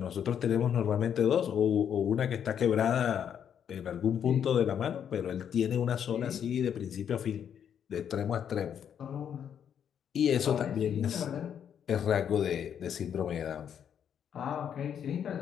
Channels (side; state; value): right; quieter; 8.6 dB